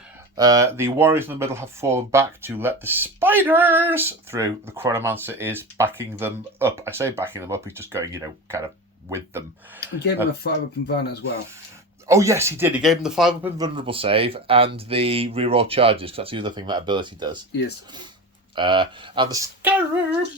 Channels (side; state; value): both; normal; correlation 0.27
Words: The warriors in the middle have fallen back to let the spiders through. The Chronomancer is backing them up. I say backing them up, he's just going, kind of with them. He gave him a 5-up invuln as well. Oh, yes, he did. He gave him the 5-up invulnerable save and the reroll charges, because that's the other thing that ability does. Yes. And the